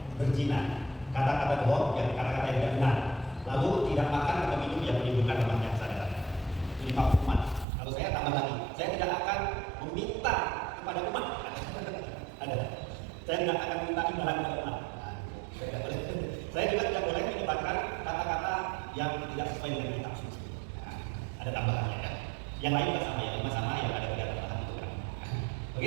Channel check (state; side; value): drops out; left; at 7.7 s